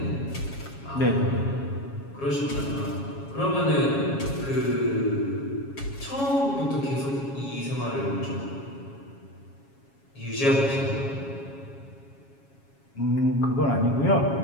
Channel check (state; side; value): late; right; 7.3 ms